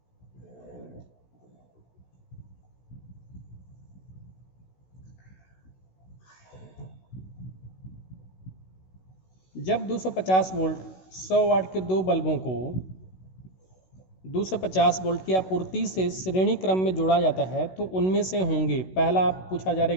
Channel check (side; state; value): right; late; 16 ms